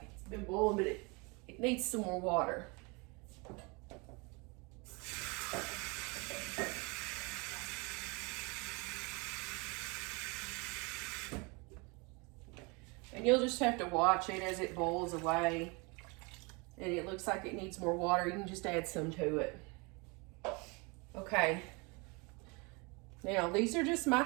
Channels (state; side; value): quieter; left; 29.1 dB